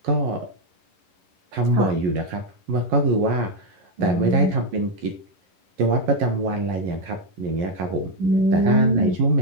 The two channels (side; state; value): left; late; 11 ms